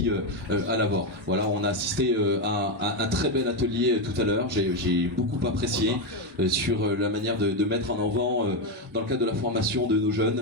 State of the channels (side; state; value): both; normal; correlation 0.08